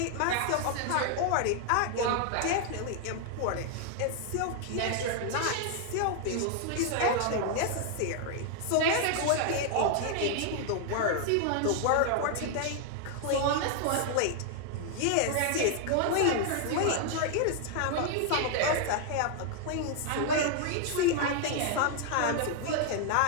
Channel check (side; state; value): both; different; correlation 0.00